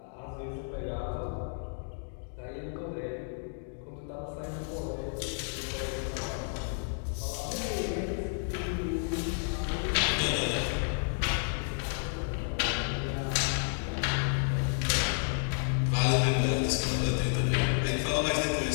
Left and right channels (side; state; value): right; silent; 57 dB below the other